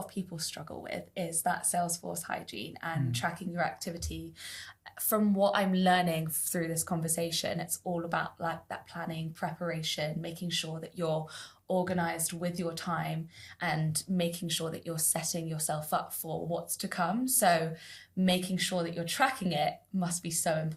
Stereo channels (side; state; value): both; identical; correlation 1.00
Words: of people struggle with, is that Salesforce hygiene and tracking your activity. From what I'm learning through this conversation, it's all about like that planning, preparation, making sure that you're organized with your time and making sure that you're setting yourself up for what's to come. So making sure that you're tracking it must be so